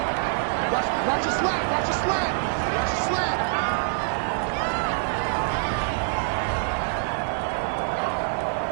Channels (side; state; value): left; silent; digital silence